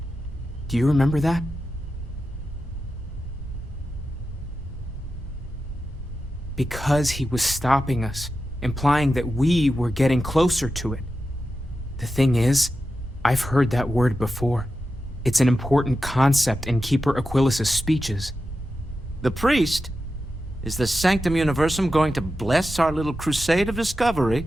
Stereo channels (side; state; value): both; normal; correlation 0.91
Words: Do you remember that? Because he was stopping us, implying that we were getting closer to it. The thing is, I've heard that word before. It's an important concept in Keeper Aquilas's speeches. The priest? Is the Sanctum Universum going to bless our little crusade of discovery?